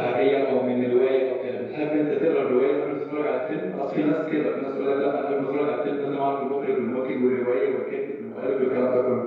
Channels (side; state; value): both; identical; correlation 1.00